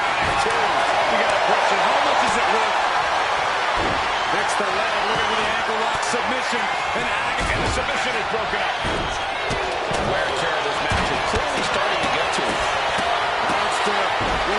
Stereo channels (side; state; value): both; identical; correlation 1.00